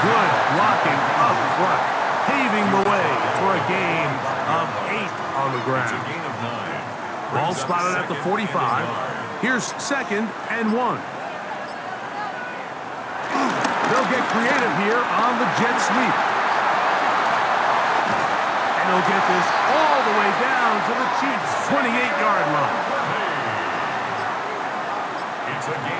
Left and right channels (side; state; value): both; identical; correlation 1.00